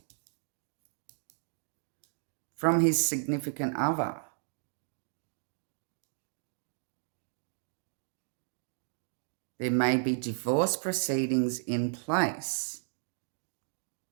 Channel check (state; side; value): silent; left; digital silence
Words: from his significant other. There may be divorce proceedings in place.